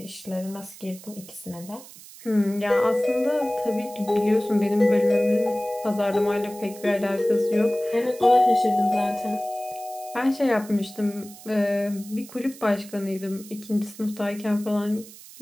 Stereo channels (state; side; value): noise; right; hiss, 18 dB below the sound